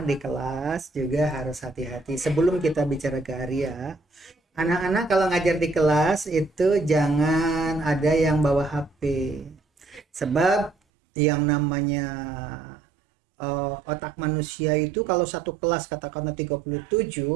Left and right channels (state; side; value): drops out; left; at 10.8 s